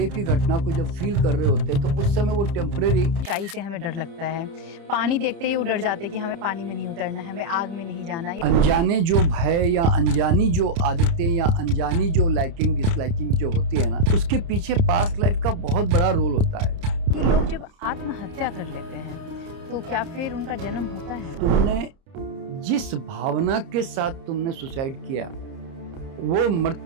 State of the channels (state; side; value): late; left; 30 ms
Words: की घटना को जब फील कर रहे होते हैं तो उस समय वो टेम्परेरी ऊंचाई से हमें डर लगता है, पानी देखते ही वो डर जाते हैं कि हमें पानी में नहीं उतरना है, हमें आग में नहीं जाना है। अनजाने जो भय या अनजानी जो आदतें या अनजानी जो लाइकिंग डिसलाइकिंग जो होती है ना, उसके पीछे पास्ट लाइफ का बहुत बड़ा रोल होता है। कि लोग जब आत्महत्या कर लेते हैं तो क्या फिर उनका जन्म होता है? तुमने जिस भावना के साथ तुमने सुसाइड किया, वो